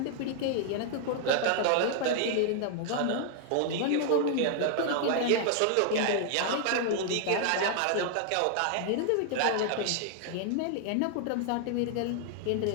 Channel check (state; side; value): different; both; correlation 0.00